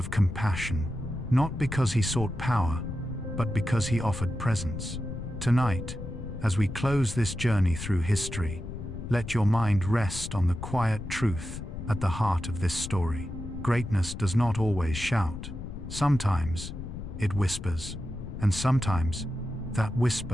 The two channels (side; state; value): left; noise; rumble, 8 dB below the sound